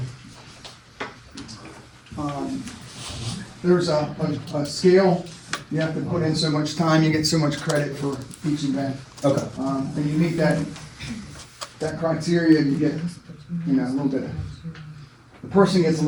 there's a scale. You have to put in so much time, you get so much credit for each event. Okay. And you meet that criteria, you get, you know, a little bit, the person gets a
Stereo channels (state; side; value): identical; both; correlation 1.00